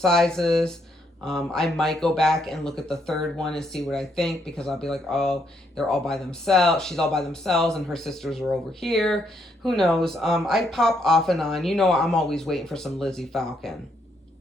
I might go back and look at the third one and see what I think, because I'll be like, oh, they're all by themselves. She's all by themselves and her sisters are over here. Who knows? I pop off and on. You know, I'm always waiting for some Lizzie Falcon.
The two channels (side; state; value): both; normal; correlation 0.74